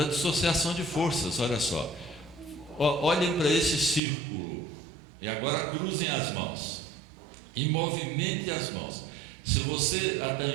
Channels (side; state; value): left; drops out; at 4.0 s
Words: dissociação de forças, olha só. Olhem para esse círculo e agora cruzem as mãos e movimentem as mãos. Se a